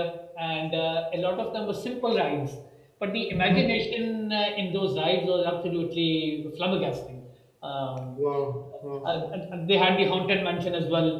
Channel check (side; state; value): both; identical; correlation 1.00